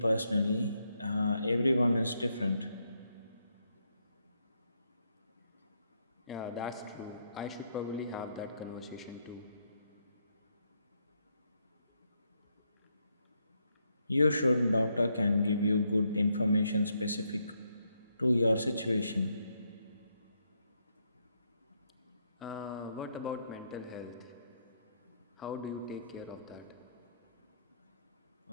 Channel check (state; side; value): inverted; both; correlation -0.78